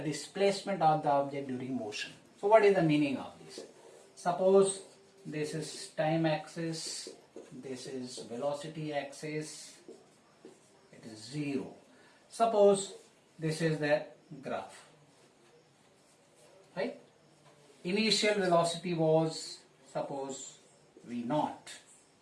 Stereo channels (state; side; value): identical; both; correlation 1.00